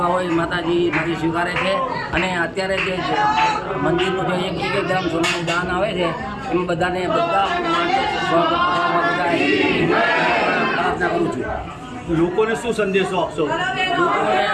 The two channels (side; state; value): both; identical; correlation 1.00